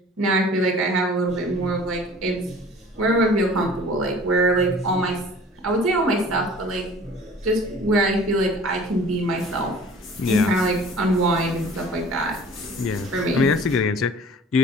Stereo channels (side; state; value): both; normal; correlation 0.47